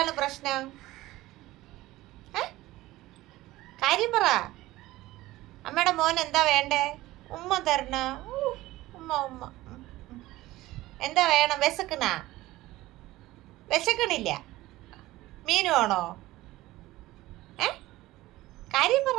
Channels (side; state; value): left; quieter; 17.5 dB